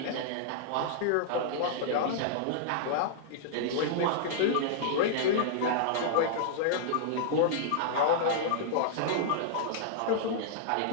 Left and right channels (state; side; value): different; both; correlation -0.02